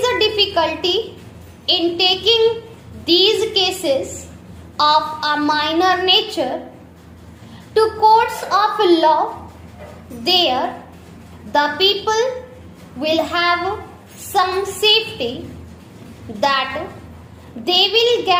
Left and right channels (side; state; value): both; identical; correlation 1.00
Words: the difficulty in taking these cases of a minor nature to courts of law? There, the people will have some safety that they will